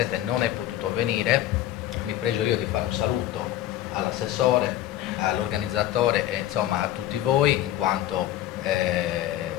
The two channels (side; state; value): right; quieter; 13.2 dB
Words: non è potuto venire, mi pregio io di fare un saluto all'assessore, all'organizzatore e insomma a tutti voi, in quanto